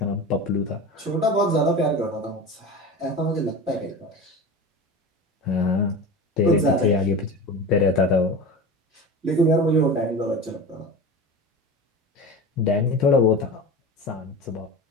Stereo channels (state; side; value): normal; both; correlation 0.30